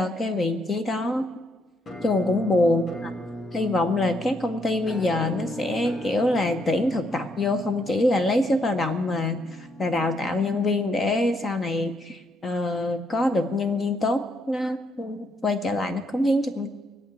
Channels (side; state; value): both; normal; correlation 0.74